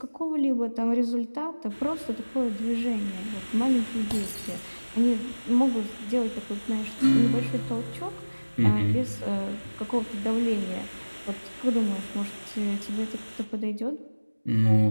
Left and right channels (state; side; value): inverted; both; correlation -1.00